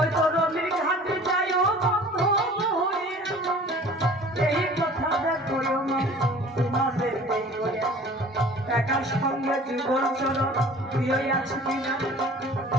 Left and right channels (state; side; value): normal; both; correlation 0.46